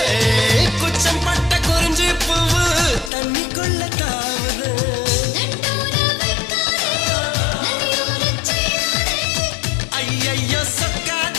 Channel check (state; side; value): drops out; right; at 3.1 s